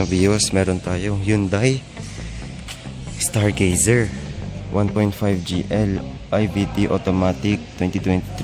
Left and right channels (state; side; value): identical; both; correlation 1.00